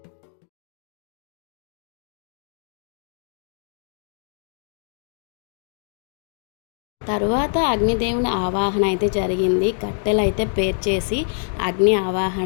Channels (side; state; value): right; silent; digital silence